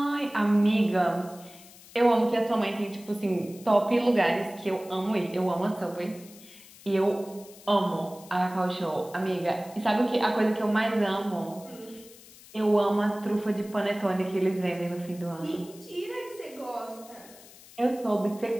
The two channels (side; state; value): left; noise; hiss, 21 dB below the sound